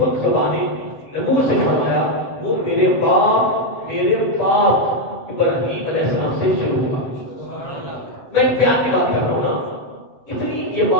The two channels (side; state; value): right; late; 8.1 ms